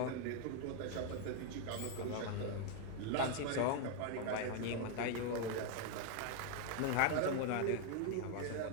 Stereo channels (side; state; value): both; different; correlation 0.00